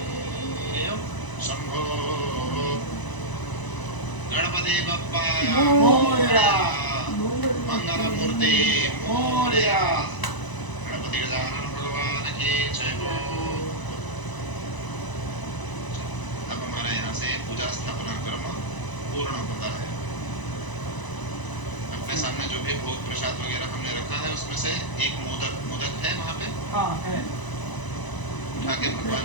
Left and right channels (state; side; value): late; right; 1.0 ms